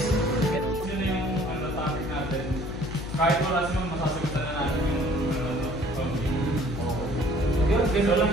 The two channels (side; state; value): left; noise; hum, 9 dB below the sound